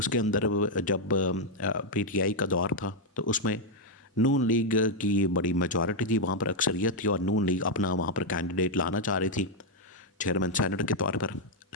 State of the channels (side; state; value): both; normal; correlation -0.01